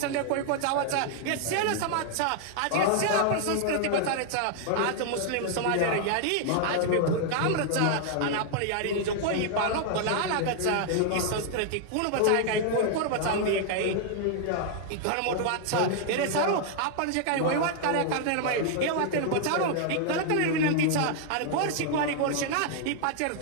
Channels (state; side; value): different; both; correlation 0.00